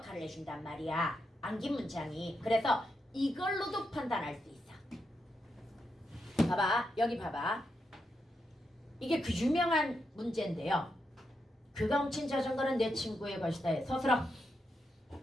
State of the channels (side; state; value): both; normal; correlation 0.84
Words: 해준단 말이야. 암긴 문장이. 그래서 이걸로도 판단할 수 있어. 봐봐. 여기 봐봐. 이게 그 유명한 문제인데요. 그가 훔친 자전거는 내 친구의 것이다. 서술어.